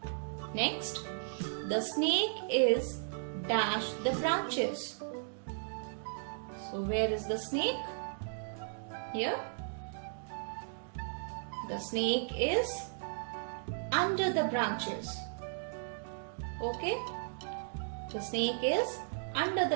Next, the snake is dash the branches. So where is the snake? Here. The snake is under the branches. Okay? The snake is under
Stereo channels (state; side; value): silent; left; digital silence